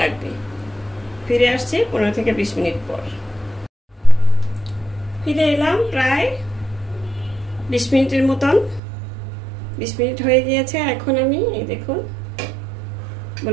লাগবে। ফিরে আসছি 15 থেকে 20 মিনিট পর। ফিরে এলাম প্রায় 20 মিনিটের মতন, 20 মিনিট হয়ে গিয়েছে। এখন আমি এই দেখুন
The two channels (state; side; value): drops out; left; at 8.8 s